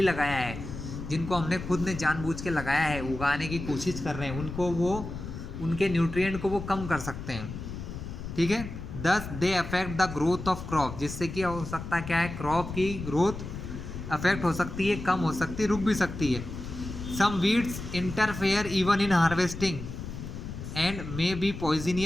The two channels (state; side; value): noise; left; rumble, 9 dB below the sound